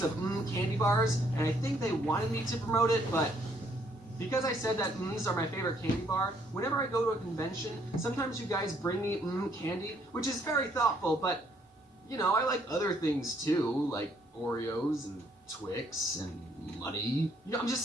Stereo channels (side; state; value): both; normal; correlation 0.67